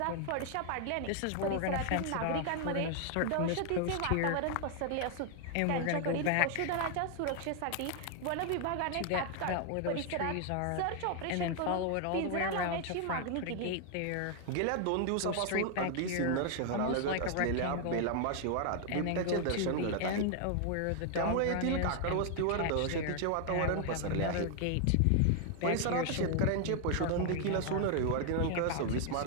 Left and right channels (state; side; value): different; both; correlation 0.00